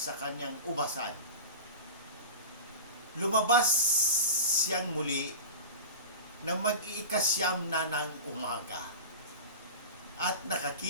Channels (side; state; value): both; inverted; correlation -0.31